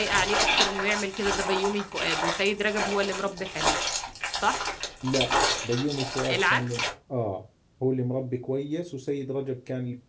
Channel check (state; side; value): identical; both; correlation 1.00